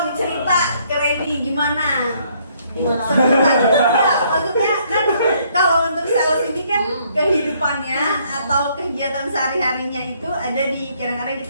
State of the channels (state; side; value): inverted; both; correlation -0.67